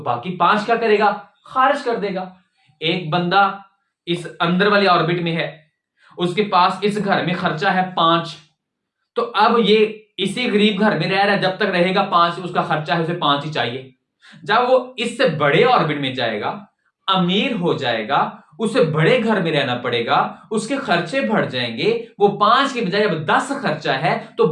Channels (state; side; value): identical; both; correlation 1.00